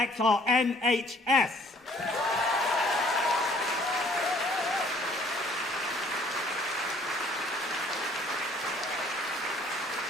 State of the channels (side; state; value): both; normal; correlation 0.58